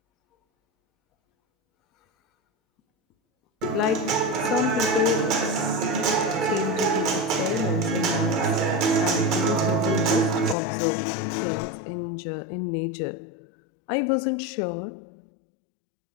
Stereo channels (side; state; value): right; drops out; at 10.6 s